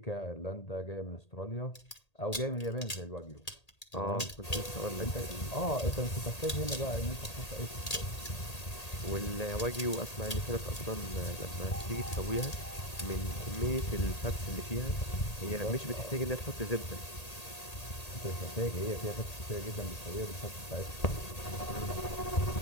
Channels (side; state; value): right; late; 1.8 ms